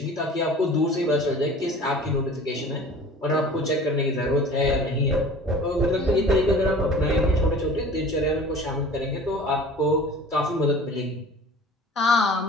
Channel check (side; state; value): both; normal; correlation 0.43